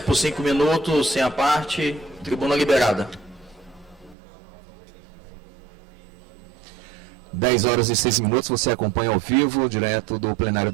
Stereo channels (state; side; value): drops out; left; at 4.2 s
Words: 5 minutos, sem a parte, tribuna liberada. 10h06, você acompanha ao vivo, direto do plenário